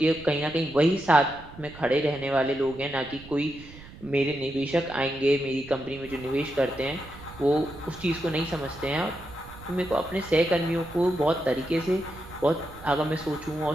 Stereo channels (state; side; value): noise; right; rumble, 18 dB below the sound